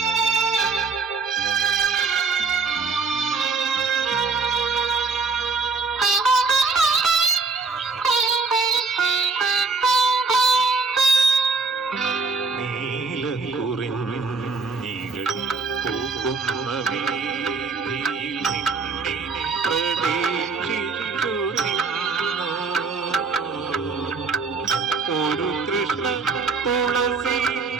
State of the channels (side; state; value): left; quieter; 4.4 dB